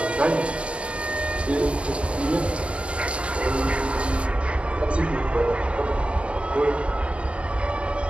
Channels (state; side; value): late; left; 0.060 ms